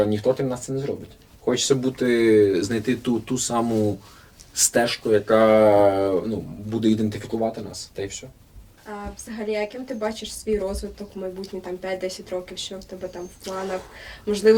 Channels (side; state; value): both; identical; correlation 1.00